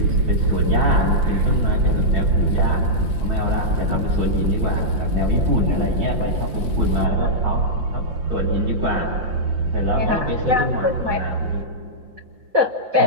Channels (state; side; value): late; left; 5.8 ms